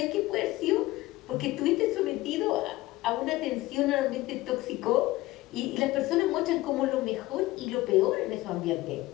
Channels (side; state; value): right; quieter; 18.4 dB